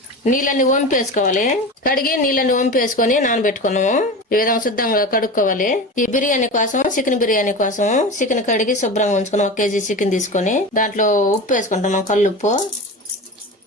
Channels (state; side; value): normal; both; correlation 0.28